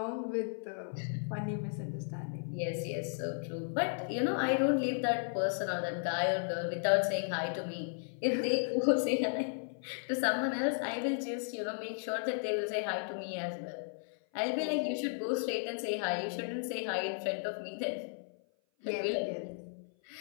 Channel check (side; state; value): right; silent; 55 dB below the other